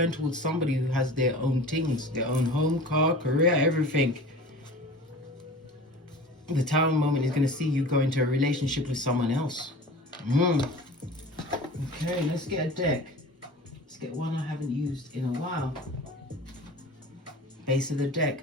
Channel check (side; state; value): both; normal; correlation 0.38